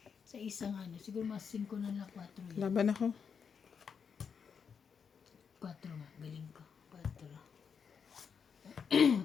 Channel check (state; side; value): quieter; right; 6.5 dB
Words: Sa isang ano, siguro mas 5 na lang, 4 yan. Laban ako. 4 nga, galing ko.